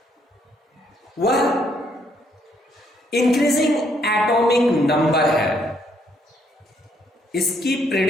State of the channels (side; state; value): both; normal; correlation 0.70